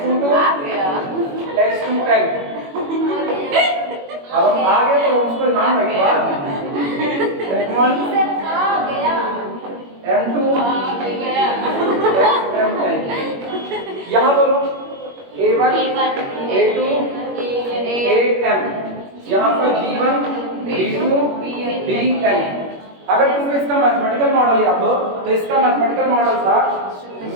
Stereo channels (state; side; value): late; left; 21 ms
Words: X2N, अब हम आ गए तो उसको नाम बैठवा, X1, M2, XMN, यहाँ बोलो A1, A2, AM, यहाँ पर B1, B2, BN। अगर तुमको इसका मैथमेटिकल मॉडल याद हो, तो इसका मैथमेटिकल मॉडल था